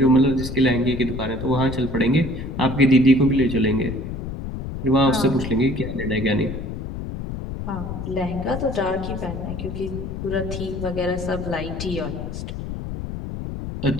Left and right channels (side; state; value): left; noise; rumble, 7 dB below the sound